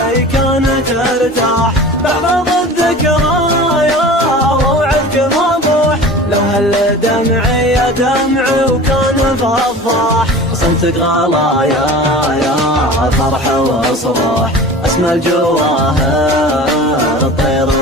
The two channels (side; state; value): both; normal; correlation 0.38